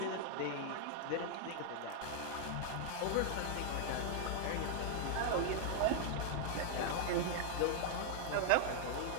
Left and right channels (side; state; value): both; different; correlation -0.01